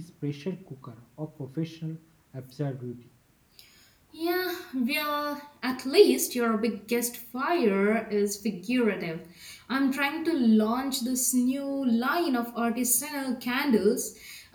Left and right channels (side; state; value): both; identical; correlation 1.00